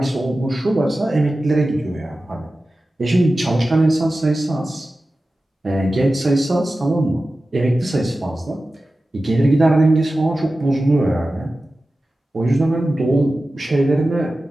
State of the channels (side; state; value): both; normal; correlation 0.95